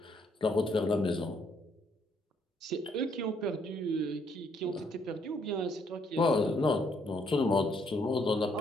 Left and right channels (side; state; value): both; normal; correlation 0.70